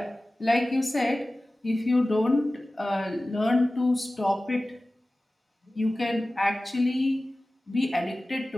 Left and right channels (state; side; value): normal; both; correlation 0.97